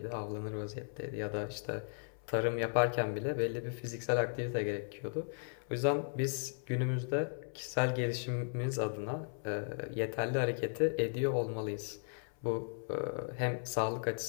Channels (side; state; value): right; silent; 54 dB below the other